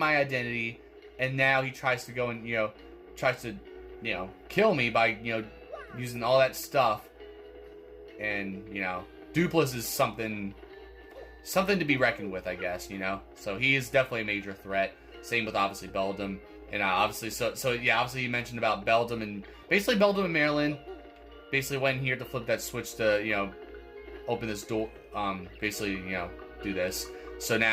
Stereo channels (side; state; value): both; identical; correlation 1.00